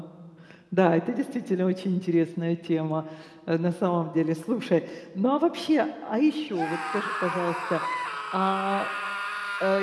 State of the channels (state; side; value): identical; both; correlation 1.00